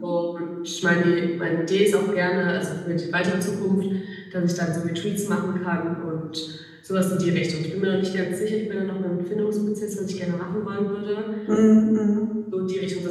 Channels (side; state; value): both; identical; correlation 1.00